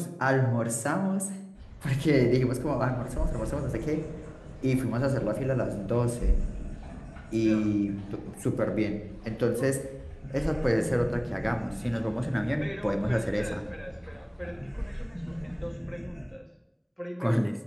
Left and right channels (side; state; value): both; identical; correlation 1.00